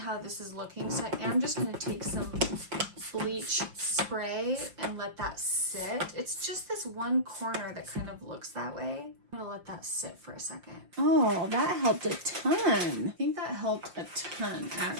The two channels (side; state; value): left; late; 5.7 ms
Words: this is looking, so I am just gonna take some bleach spray and let that sit. It's just this one corner that kind of looks that way. I'm gonna let that sit for a second. Oh, that helped a ton. I think that helped a ton,